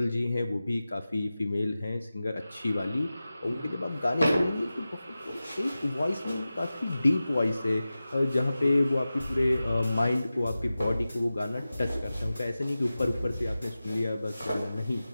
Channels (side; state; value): both; inverted; correlation -0.95